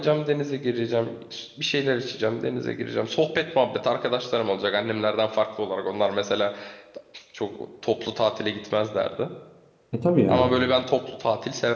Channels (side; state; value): both; identical; correlation 1.00